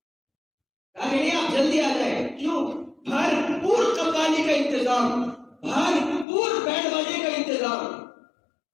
کہا کہ نہیں آپ جلدی آ جائیں. کیوں؟ بھرپور قوالی کا انتظام, بھرپور بینڈ باجے کا انتظام.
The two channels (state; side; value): drops out; right; at 6.2 s